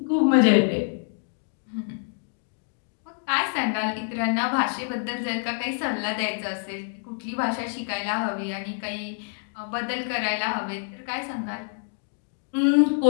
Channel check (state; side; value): silent; right; digital silence